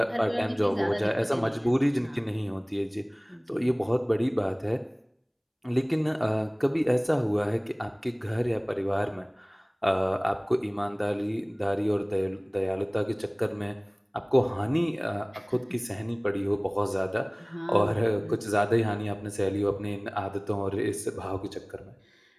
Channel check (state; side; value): identical; both; correlation 1.00